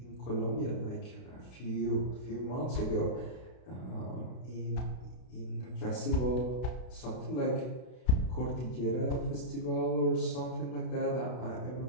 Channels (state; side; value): late; right; 32 ms